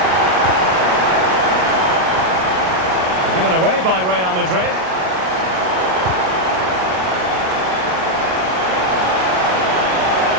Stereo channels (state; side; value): late; left; 38 ms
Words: Given away by Real Madrid.